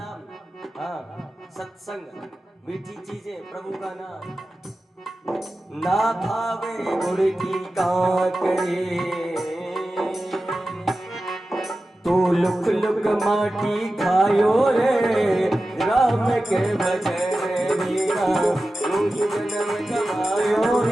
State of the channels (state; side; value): normal; both; correlation 0.94